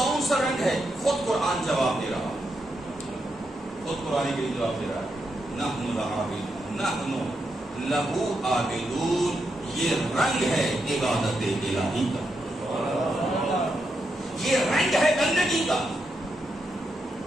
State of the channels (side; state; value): both; normal; correlation 0.83